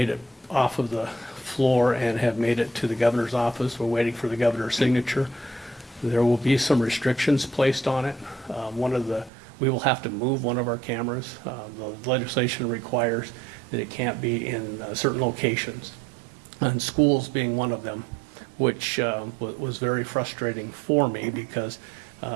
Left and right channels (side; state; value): left; drops out; at 9.3 s